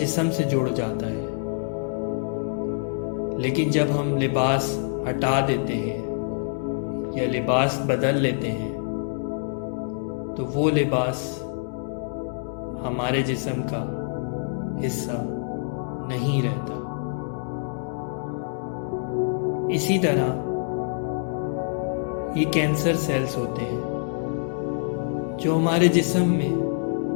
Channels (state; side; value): silent; right; digital silence